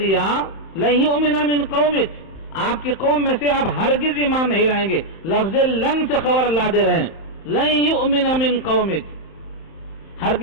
دیا، لَن يُؤْمِنَ مِن قَوْمِكَ، آپ کی قوم میں سے آپ ہرگز ایمان نہیں لائیں گے، لفظ لن سے خبر اللہ دے رہے ہیں، لَن يُؤْمِنَ مِن قَوْمِكَ،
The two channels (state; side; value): late; right; 31 ms